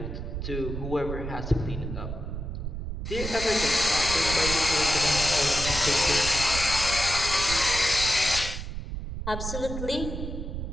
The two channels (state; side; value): noise; right; rumble, 6 dB below the sound